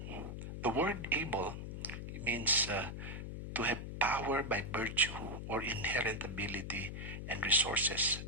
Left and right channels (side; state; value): left; noise; hum, 7 dB below the sound